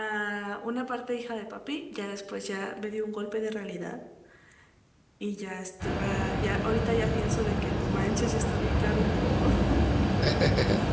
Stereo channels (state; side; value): identical; both; correlation 1.00